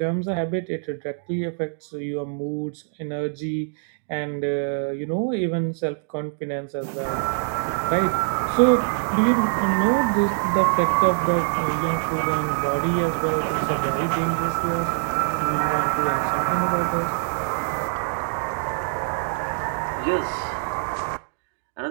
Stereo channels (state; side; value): silent; left; digital silence